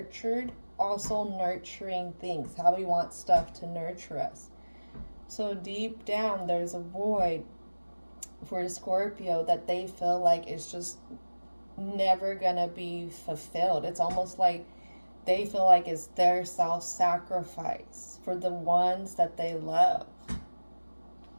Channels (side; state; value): both; inverted; correlation -1.00